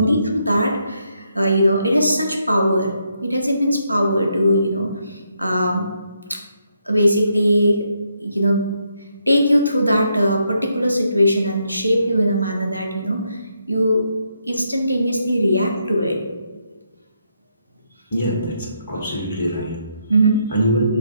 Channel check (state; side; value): inverted; both; correlation -0.77